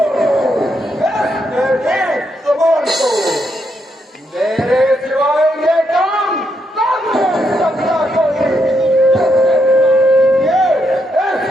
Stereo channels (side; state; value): both; normal; correlation 0.78